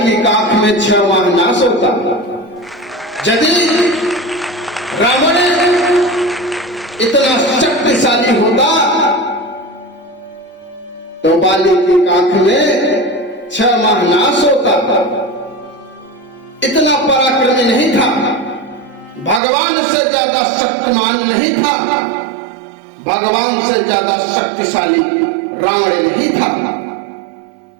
की काख में 6 माह नाश होता। यदि रावण इतना शक्तिशाली होता तो बाली की काख में 6 माह नाश होता। इतना पराक्रमी नहीं था, भगवान से ज्यादा शक्तिमान नहीं था, भगवान से ज्यादा शक्तिशाली रावण नहीं था।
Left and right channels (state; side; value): drops out; left; at 19.4 s